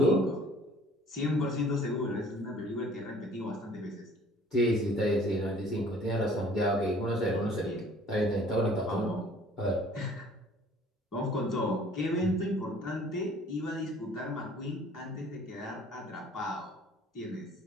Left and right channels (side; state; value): both; normal; correlation 0.53